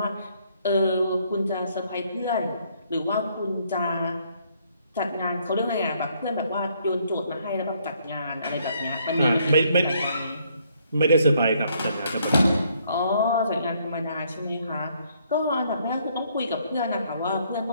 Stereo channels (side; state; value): both; inverted; correlation -0.68